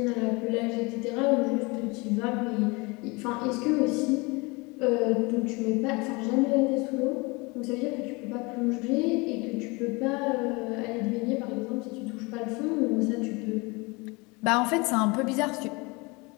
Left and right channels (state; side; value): quieter; right; 26.6 dB